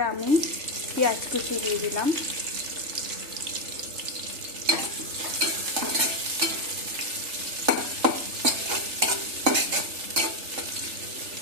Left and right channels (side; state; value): left; late; 3.4 ms